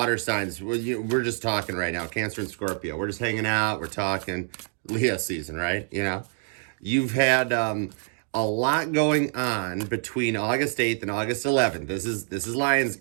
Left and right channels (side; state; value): left; silent; 61 dB below the other